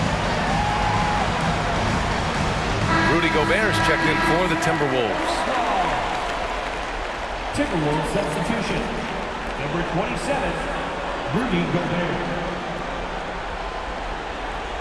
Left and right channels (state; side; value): identical; both; correlation 1.00